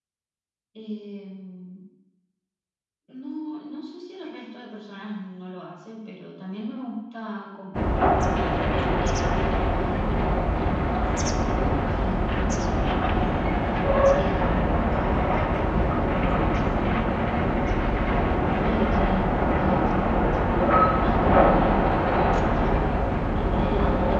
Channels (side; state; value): both; identical; correlation 1.00